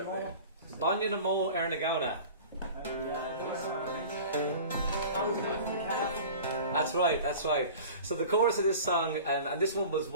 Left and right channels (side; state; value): both; inverted; correlation -0.39